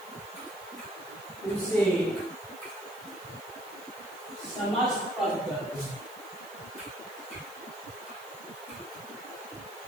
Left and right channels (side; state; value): right; noise; hiss, 19 dB below the sound